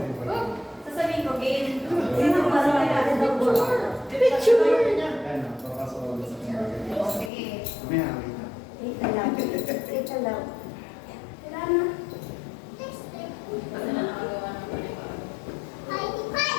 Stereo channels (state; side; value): drops out; right; at 7.3 s